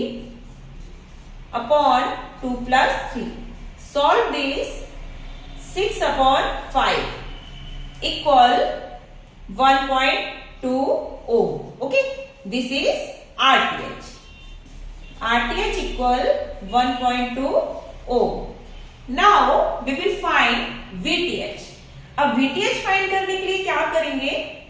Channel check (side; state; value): both; identical; correlation 1.00